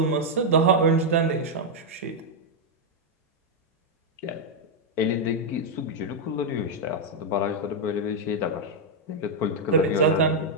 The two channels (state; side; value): normal; both; correlation -0.02